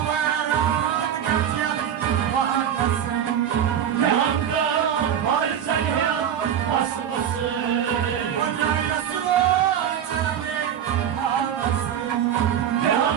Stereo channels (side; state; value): left; quieter; 9.3 dB